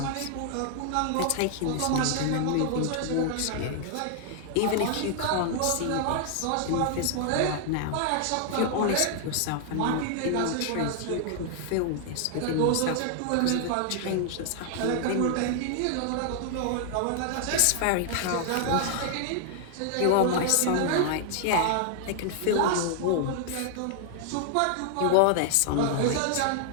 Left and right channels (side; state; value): both; different; correlation 0.00